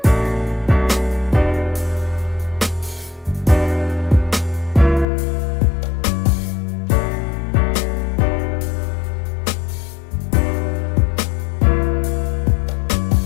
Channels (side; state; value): right; drops out; at 5.1 s